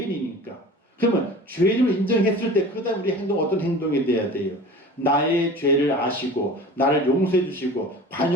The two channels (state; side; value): normal; both; correlation 0.39